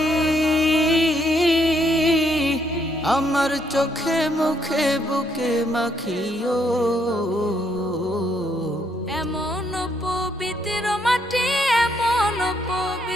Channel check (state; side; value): normal; both; correlation 0.72